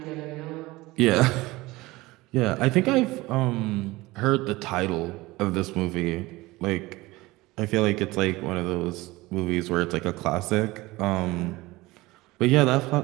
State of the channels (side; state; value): left; quieter; 20.3 dB